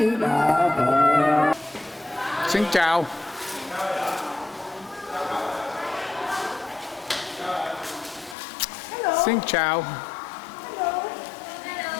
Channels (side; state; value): right; drops out; at 8.3 s